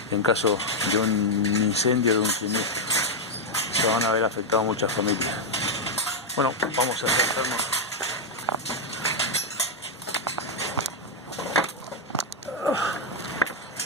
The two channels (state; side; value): normal; both; correlation -0.01